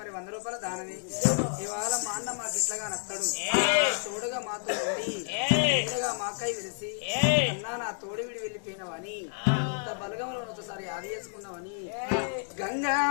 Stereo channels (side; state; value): right; silent; 58 dB below the other